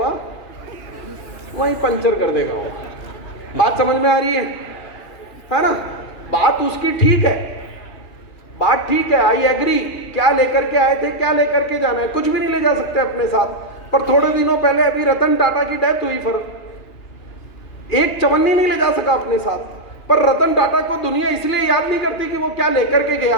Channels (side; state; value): right; late; 2.4 ms